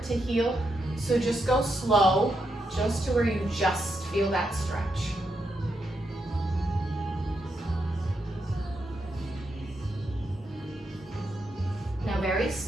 to heal. So just go slow, just to where you just feel that stretch. Now very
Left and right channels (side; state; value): both; normal; correlation 0.82